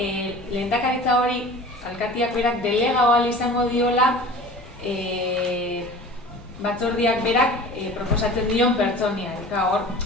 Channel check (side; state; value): both; normal; correlation 0.41